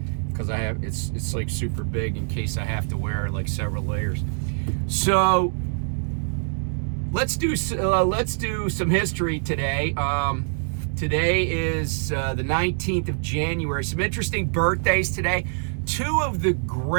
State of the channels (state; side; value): silent; left; digital silence